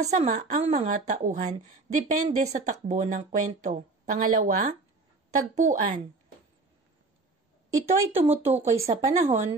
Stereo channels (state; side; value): quieter; left; 3.6 dB